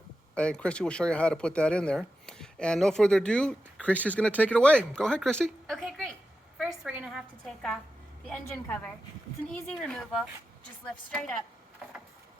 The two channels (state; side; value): normal; both; correlation 0.90